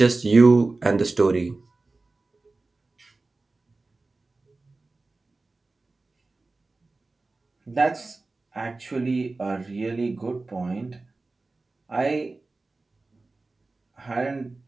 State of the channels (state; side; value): quieter; left; 3.4 dB